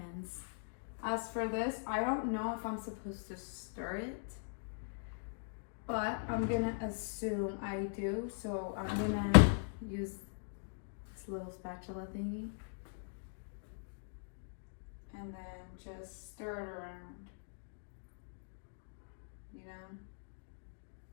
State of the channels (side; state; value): right; silent; digital silence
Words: As for this, I don't know if I'm supposed to stir it, but I'm gonna assume I do. So I'm gonna use this little spatula thingy and then just stir it around, you know.